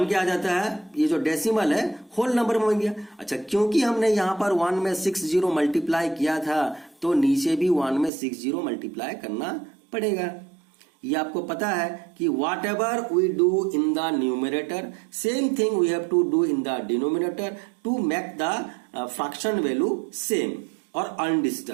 के आ जाता है, ये जो डेसिमल है होल नंबर में बन गया। अच्छा, क्योंकि हमने यहां पर 1 में 6 जीरो मल्टीप्लाई किया था तो नीचे भी 1 में 6 जीरो मल्टीप्लाई करना पड़ेगा। ये आपको पता है कि whatever we do in the numerator same thing we have to do in the denominator to make the fraction value same और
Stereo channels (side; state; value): left; drops out; at 8.1 s